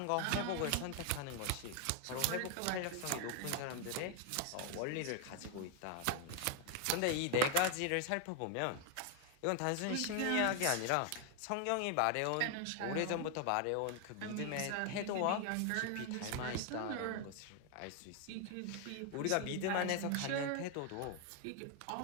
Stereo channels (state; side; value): different; both; correlation 0.01